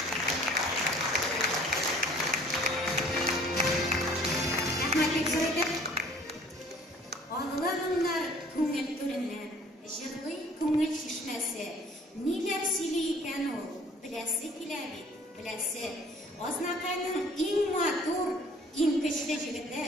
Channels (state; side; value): normal; both; correlation 0.53